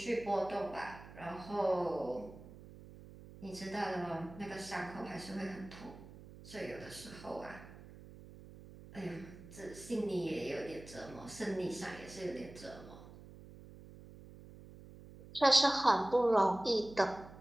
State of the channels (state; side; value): noise; right; hum, 17 dB below the sound